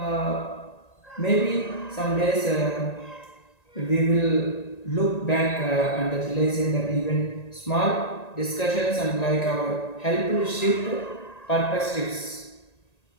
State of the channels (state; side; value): late; right; 1.9 ms